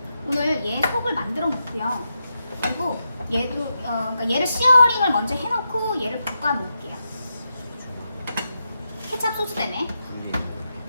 오늘 얘 속을 만들어 놓고요. 그리고 얘도 그러니까 얘를 시어링을 먼저 해놓고 얘를 볶아 놓을게요. 케찹 소스 때문에.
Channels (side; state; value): both; inverted; correlation -0.87